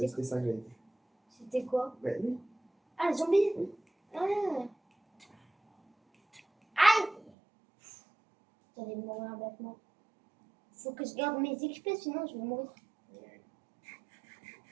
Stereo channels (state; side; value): drops out; left; at 7.3 s